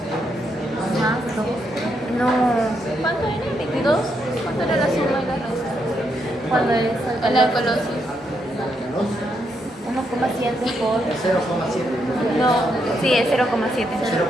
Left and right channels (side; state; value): both; normal; correlation 0.79